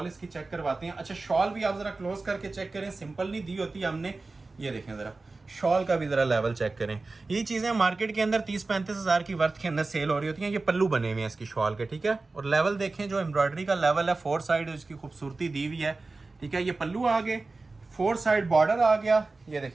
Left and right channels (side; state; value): left; quieter; 3.6 dB